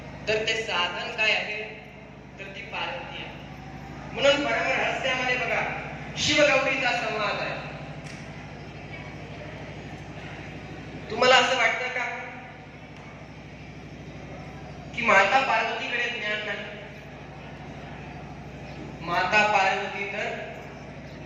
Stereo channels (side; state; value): both; identical; correlation 1.00